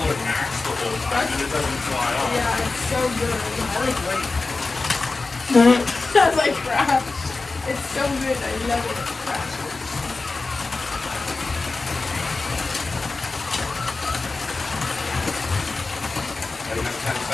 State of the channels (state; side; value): quieter; right; 3.7 dB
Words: max the whole time and it doesn't fly off. Yeah, it's so good. I like white. That's like crap. It's so good. I love it. Crap. I have 10